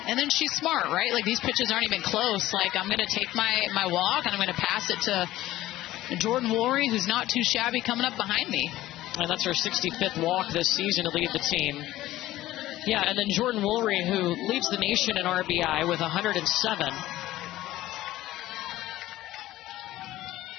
then she's smart, right? Like, these pitches aren't even close. Like, I'm going to take my walk, and I'm going to pass it to Jordan Woolry, who's not too shabby, coming up behind me. And that's her 65th walk this season to lead the team. Yeah, and then Jordan Woolry, who leads the nation in RBI with 107.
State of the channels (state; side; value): quieter; right; 15.6 dB